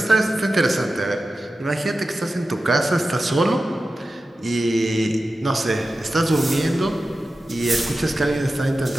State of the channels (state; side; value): normal; both; correlation 0.93